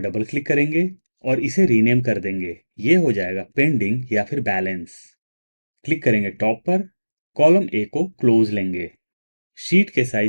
क्लिक करेंगे और इसे रीनेम कर देंगे। ये हो जाएगा पेंडिंग या फिर बैलेंस। क्लिक करेंगे टॉप पर, कॉलम ए को क्लोज लेंगे, शीट के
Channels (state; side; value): inverted; both; correlation -1.00